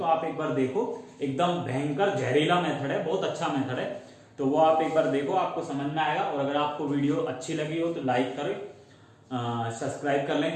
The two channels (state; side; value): identical; both; correlation 1.00